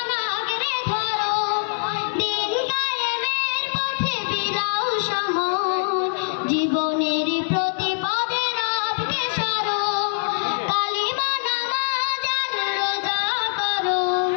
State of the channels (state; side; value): silent; right; 63 dB below the other